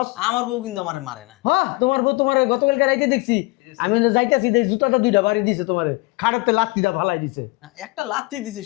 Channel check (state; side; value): quieter; right; 24.4 dB